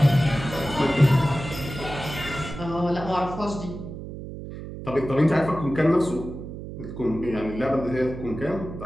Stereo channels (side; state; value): right; noise; hum, 10 dB below the sound